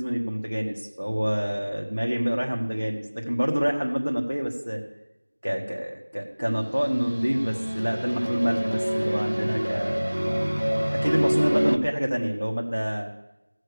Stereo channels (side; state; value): both; inverted; correlation -1.00